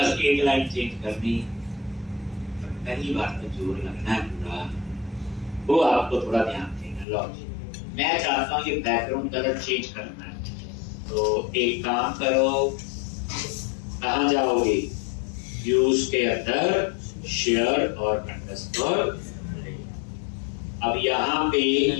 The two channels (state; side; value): drops out; right; at 7.1 s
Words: एक लाइन चेंज करनी। पहली बार तो जोर लगना है पूरा, वो आपको थोड़ा ध्यान देना। लॉजिक मैं चाहता हूँ ये बैकग्राउंड कलर चेंज करना है, तो एक काम करो, कहाँ जाओगे, व्यूज के अंदर शेयर और अंडरस्कोर, अब यहाँ पे